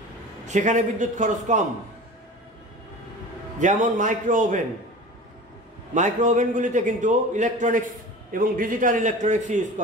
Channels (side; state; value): both; normal; correlation 0.36